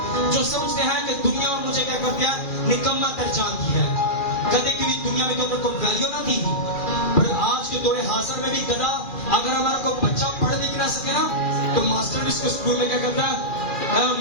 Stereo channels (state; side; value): late; right; 2.4 ms